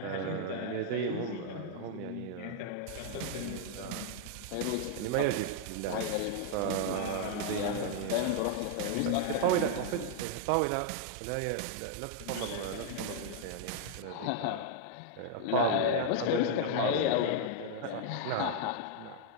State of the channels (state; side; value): different; both; correlation -0.01